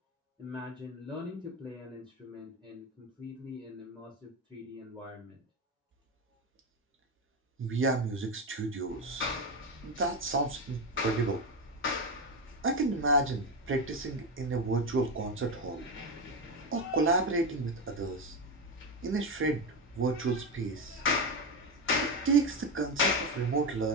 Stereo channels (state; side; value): normal; both; correlation 0.14